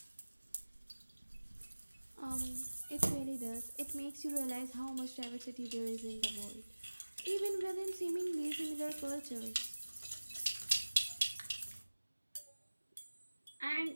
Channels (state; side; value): inverted; both; correlation -1.00